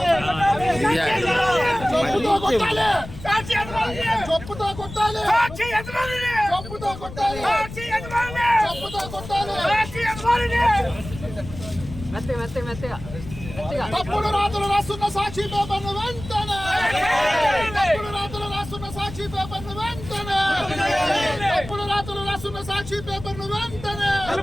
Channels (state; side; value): noise; left; rumble, 12 dB below the sound